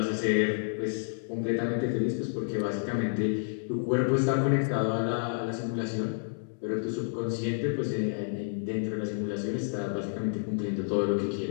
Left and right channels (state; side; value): silent; right; digital silence